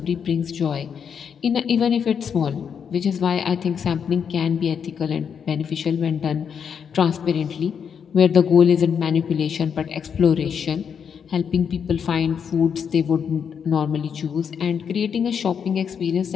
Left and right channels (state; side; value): quieter; right; 7.2 dB